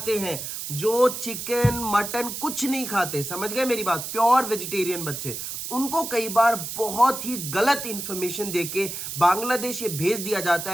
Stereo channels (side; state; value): right; noise; hiss, 6 dB below the sound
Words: हैं, जो चिकन मटन कुछ नहीं खाते, समझ गए मेरी बात? प्योर वेजिटेरियन बच्चे, उनको कई बार बहुत ही गलत इंफॉर्मेशन देके बांग्लादेश ये भेज दिया जाता